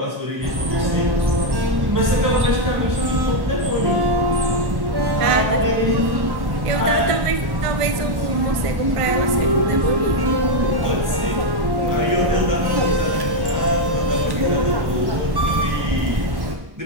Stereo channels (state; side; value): late; left; 1.1 ms